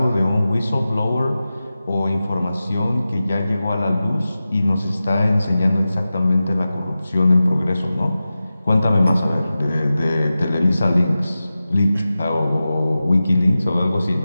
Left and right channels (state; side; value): inverted; both; correlation -0.94